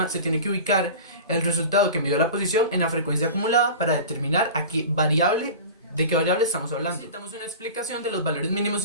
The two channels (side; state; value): both; inverted; correlation -0.34